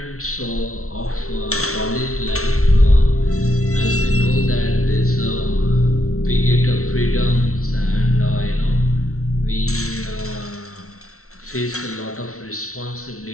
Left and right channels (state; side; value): late; right; 0.63 ms